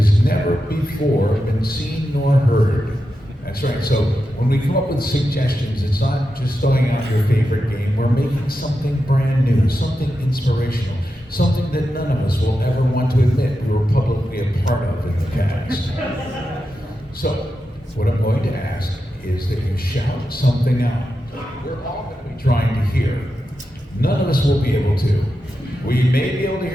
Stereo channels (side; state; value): both; normal; correlation 0.89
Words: never before been seen nor heard. That's right, so when we come up with suggestions, it's not just throwing out your favorite game, we're making something brand new, something inspirational, something that none of us will ever want to admit we were publicly a part of in the past. So, what I'm going to ask is that you shout something out. We're all going to be trying to hear. None of us will be able to. We may be able to